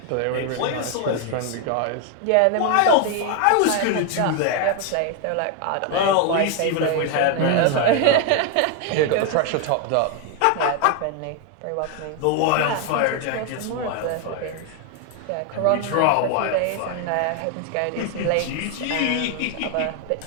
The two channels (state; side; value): different; both; correlation 0.01